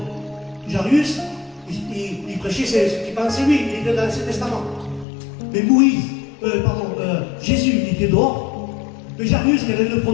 Jairus, il prêchait ce qu'il pensait lui, il était dans l'Ancien Testament. Mais Jésus, il était dehors. Mais Jairus, quel est le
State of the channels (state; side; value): drops out; right; at 5.1 s